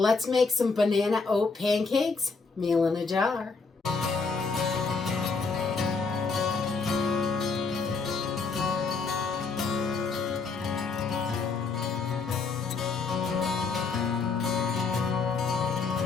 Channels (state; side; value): quieter; right; 4.5 dB